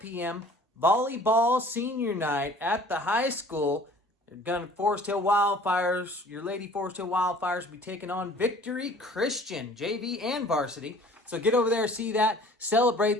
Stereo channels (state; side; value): normal; both; correlation 0.49